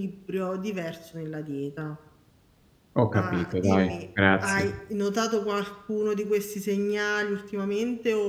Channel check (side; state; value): both; identical; correlation 1.00